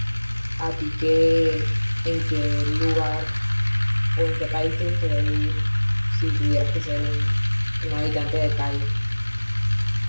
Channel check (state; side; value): inverted; both; correlation -1.00